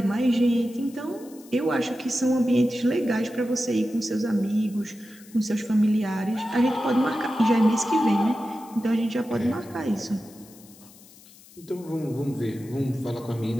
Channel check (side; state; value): left; noise; hiss, 23 dB below the sound